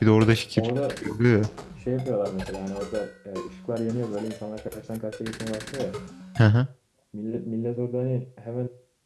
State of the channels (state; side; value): identical; both; correlation 1.00